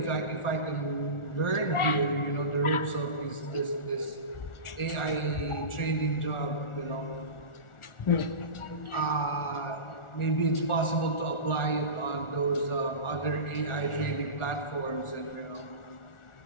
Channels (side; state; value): right; late; 1.4 ms